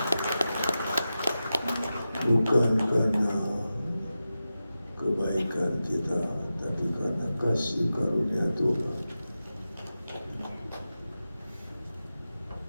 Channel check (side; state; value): both; inverted; correlation -0.93